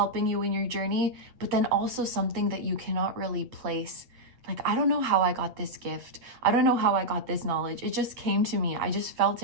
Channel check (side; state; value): left; late; 8.4 ms